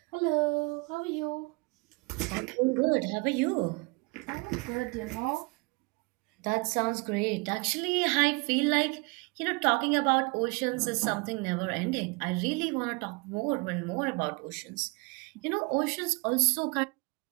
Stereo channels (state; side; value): quieter; left; 29.0 dB